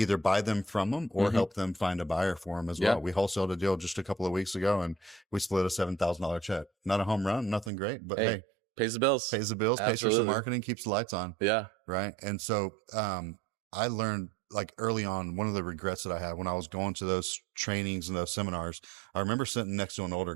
buy them from them or help them find a buyer for them as well. We wholesaled a deal just a couple of weeks ago, and we split a $7,000 check. Not a home run, nothing great, but hey, pays the bills, Absolutely. Pays for some marketing, keeps the lights on. Yeah. Right. And so, I learned, like, early on, one of the regrets that I had when I was going to those trainings and those seminars, I remember sitting next to an older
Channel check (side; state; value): left; drops out; at 7.7 s